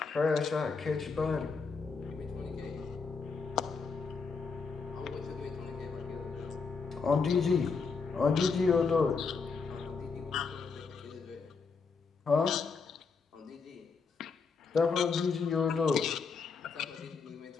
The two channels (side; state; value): right; quieter; 5.0 dB